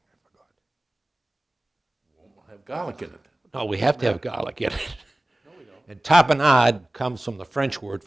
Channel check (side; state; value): both; normal; correlation 0.97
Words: I forgot. We'll have garlic in it. No, we have to have garlic in it. No, we don't. And tapenade comes from the French word